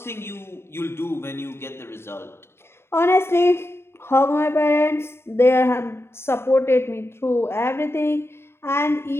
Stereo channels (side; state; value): right; late; 0.12 ms